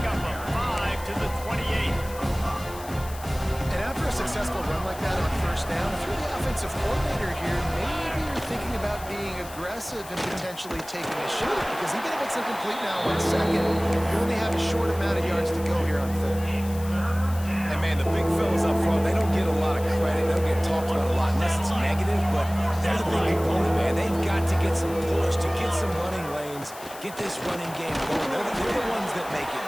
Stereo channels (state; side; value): noise; left; hiss, 16 dB below the sound